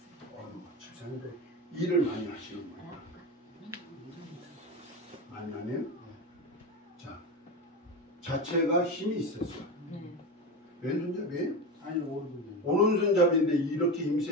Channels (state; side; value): normal; both; correlation 0.21